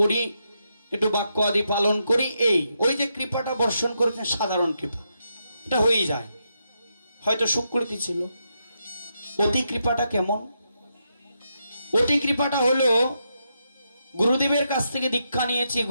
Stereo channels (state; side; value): inverted; both; correlation -0.83